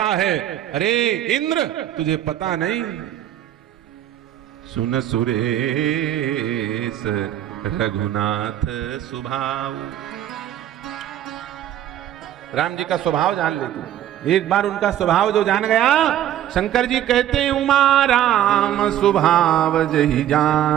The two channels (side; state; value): left; quieter; 11.6 dB